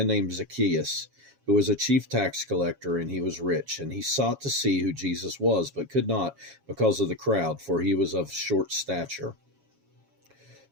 named Zacchaeus, who was a chief tax collector, and he was rich. And he sought to see who Jesus was, but could not because of the crowd, for he was of short stature.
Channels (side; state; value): left; late; 7.3 ms